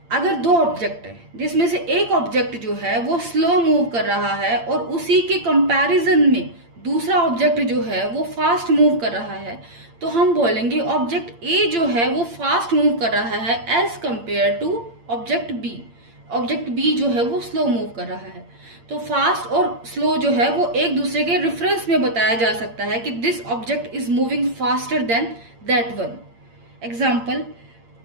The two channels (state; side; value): late; left; 8.7 ms